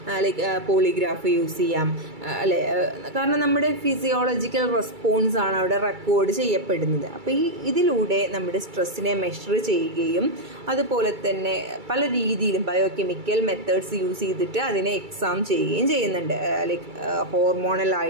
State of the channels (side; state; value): left; late; 2.3 ms